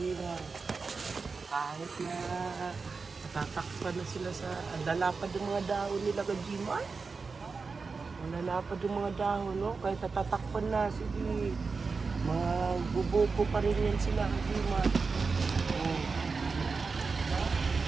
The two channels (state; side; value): quieter; left; 4.6 dB